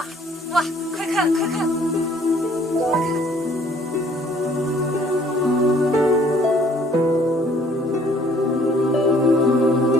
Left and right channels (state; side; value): normal; both; correlation 0.59